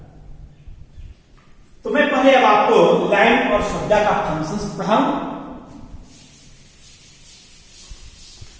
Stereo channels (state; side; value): identical; both; correlation 1.00